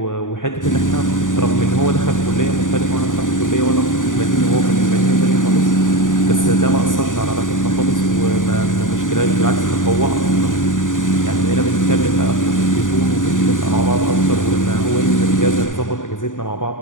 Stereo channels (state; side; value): late; right; 0.88 ms